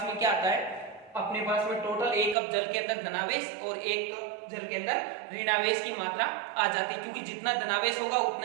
में क्या आता है? अपने पास में टोटल एक कप जल के अंदर धनावेश और एक कप जल के अंदर ऋणावेश की मात्रा आ जाती है, क्योंकि जितना धनावेश होगा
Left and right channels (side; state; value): left; drops out; at 2.4 s